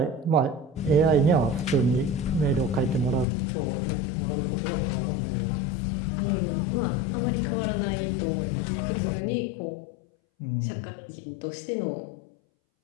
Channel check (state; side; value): drops out; right; at 3.2 s